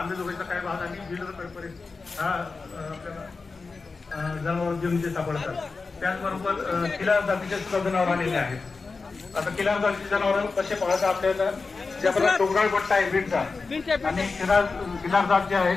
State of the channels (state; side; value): quieter; right; 4.3 dB